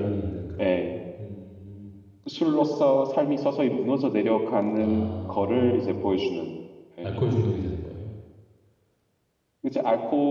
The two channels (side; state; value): both; identical; correlation 1.00